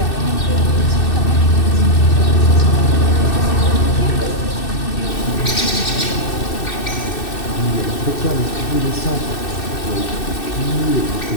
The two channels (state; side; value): late; right; 2.6 ms